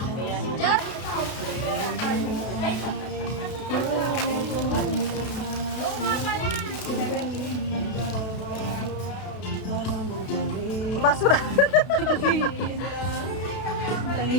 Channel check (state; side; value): late; right; 32 ms